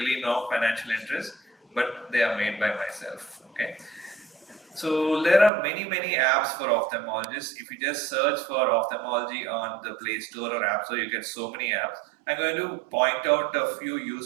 no financial interest, but they are made by myself. Okay. So there are many apps for ophthalmologists. If you just search for ophthalmology on the Play Store or App Store, you get so many apps. I'm going to point out a few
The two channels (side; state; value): left; drops out; at 5.5 s